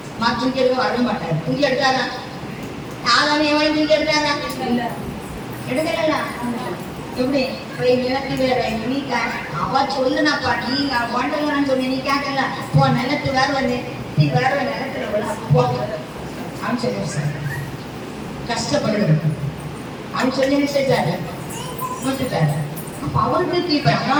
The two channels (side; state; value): both; identical; correlation 1.00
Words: தூக்கி எடுக்க வர மாட்டாரு. தூக்கி எடுத்தாரா? யாராலும் எவ்வளவு தூக்கி எடுத்தாரா? எடுக்கல. எப்படி போய் நிலத்து வேற நீ அவ சொல்லுனாப்பா, நீ வாண்டலான்னு சொன்ன, நீ கேட்கல போ நிலத்து வேற வந்து நீ வேற நிலத்துல போ அப்படின்னு சொல்லி சார் கஷ்டப்படுறது அப்படின்னு சொல்லி செஞ்சாரு, விட்டுட்டாரு. அப்ப அவருக்கு கீழ்படினா